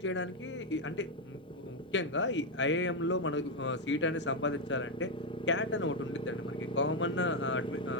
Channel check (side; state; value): both; normal; correlation 0.03